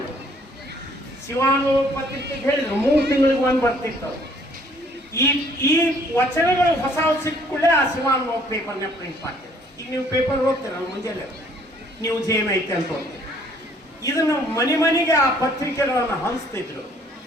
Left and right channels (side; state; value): both; normal; correlation 0.61